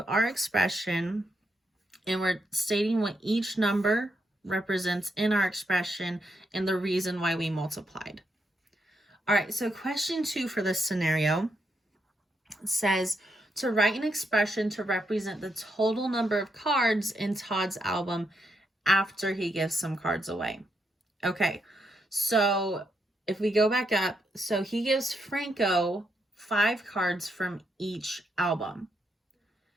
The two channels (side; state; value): both; normal; correlation 0.80